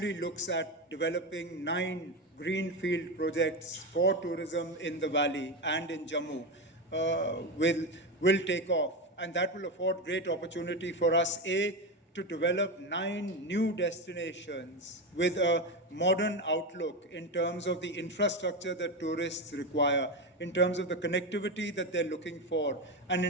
looks at developing 9 greenfield projects for tourism in the valley and in Jammu, will take off. And that will afford great opportunity for us, A, to develop 9 new destinations with a modern outlook in terms of the infrastructure that tourists require, in terms of the connectivity that they're looking for, and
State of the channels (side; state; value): both; normal; correlation 0.15